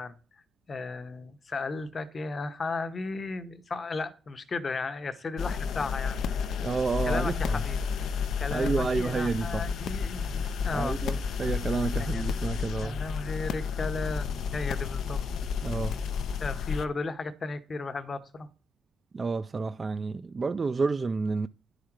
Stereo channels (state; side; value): normal; both; correlation 0.81